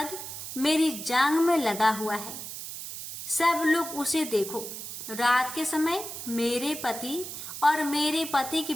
मेरी जांग में लगा हुआ है। सब लोग उसे देखो। रात के समय मेरे पति और मेरे पति के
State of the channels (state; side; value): noise; right; hiss, 9 dB below the sound